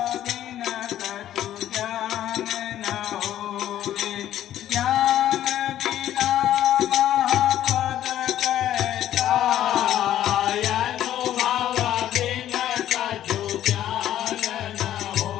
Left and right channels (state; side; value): quieter; right; 12.1 dB